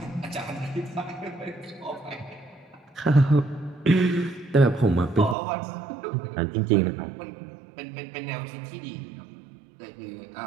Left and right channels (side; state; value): left; drops out; at 5.4 s